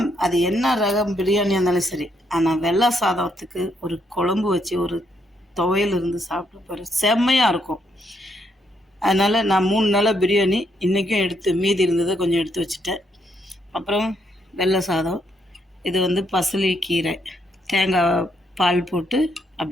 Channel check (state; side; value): normal; both; correlation 0.75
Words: அது என்ன ரகம் பிரியாணியாக இருந்தாலும் சரி, ஆனால் வெள்ளை சாதத்துக்கு ஒரு குழம்பு வச்சு ஒரு துவையல் இருந்து சாப்பிட்டு பாரு, செம்மையாக இருக்கும். அதனால் நான் 3 நாளாக பிரியாணி இன்றைக்கும் எடுத்து மீதி இருந்ததை கொஞ்சம் எடுத்து வச்சுட்டேன். அப்புறம் வெள்ளை சாதம், இது பசலி கீரை, தேங்காய் பால் போட்டு